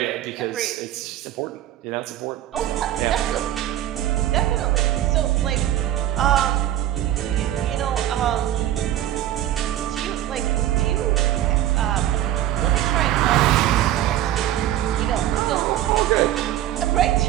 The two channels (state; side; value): quieter; left; 12.7 dB